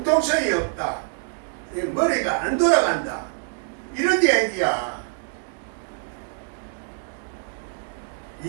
없다. 머리가 안 돌아간다. 이런 얘기야.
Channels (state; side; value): silent; left; 60 dB below the other